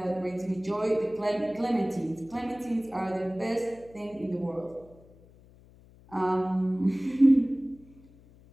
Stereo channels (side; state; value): left; noise; hum, 25 dB below the sound